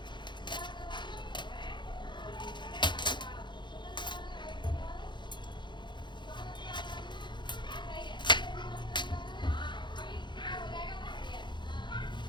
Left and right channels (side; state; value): right; late; 0.22 ms